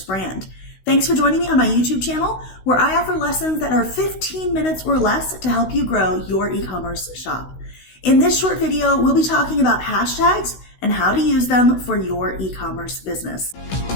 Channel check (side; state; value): right; late; 16 ms